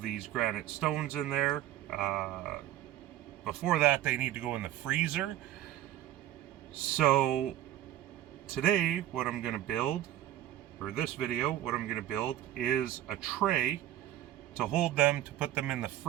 these granite stones in there. Before that, they need to go in the freezer. So today, what I'm going to build, or this video, what I'm going to build is a tray to hold them, to put them in the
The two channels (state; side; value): quieter; left; 13.1 dB